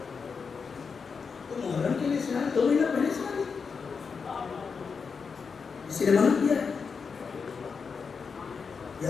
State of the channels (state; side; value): quieter; right; 5.5 dB